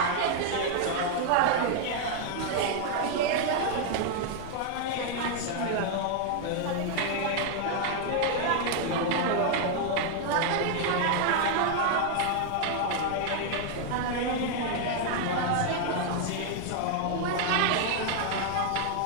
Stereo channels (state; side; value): different; both; correlation 0.00